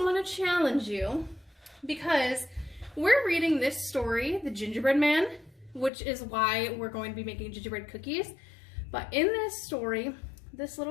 want to challenge you because we're reading this story, The Gingerbread Man, which is why we're going to be making gingerbread cookies. But in this story, this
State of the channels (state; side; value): drops out; right; at 5.9 s